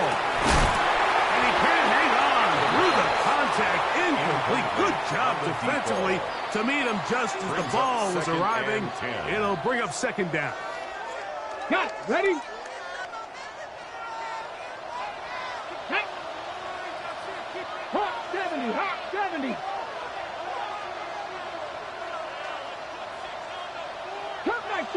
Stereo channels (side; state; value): both; identical; correlation 1.00